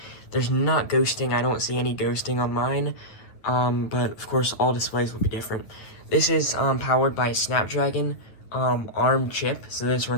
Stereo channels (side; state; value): right; late; 9.2 ms